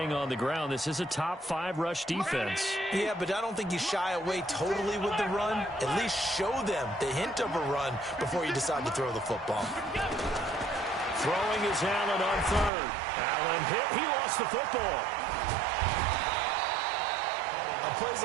on the ground, this is a top-5 rush defense. Yeah, but I don't think you shy away totally with the run. At least show them the hint of a run before you decide to throw the football. Throwing is Allen on 3rd. Allen hit. He lost the football. On plays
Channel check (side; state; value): left; drops out; at 12.7 s